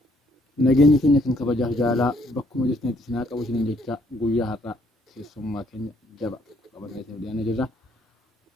nageenya keenya kan kabajaaf jaalaa bakkuma jirtanitti sinaa qabu isiniin jecha guyyaa har'aa keessummaa keenya jaba qabatee dhiyaannee jirra.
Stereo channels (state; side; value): normal; both; correlation 0.67